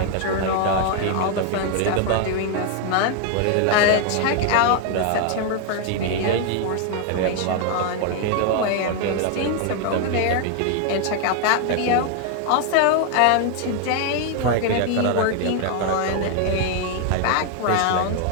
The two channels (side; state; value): both; different; correlation 0.00